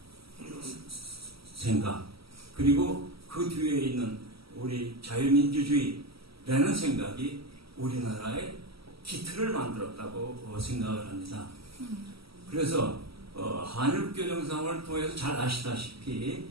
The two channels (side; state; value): left; late; 0.76 ms